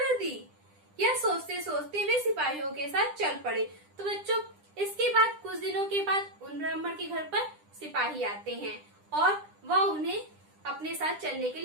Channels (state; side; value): late; left; 9.9 ms